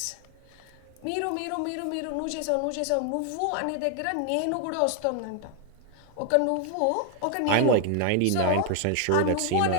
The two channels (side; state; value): both; different; correlation 0.00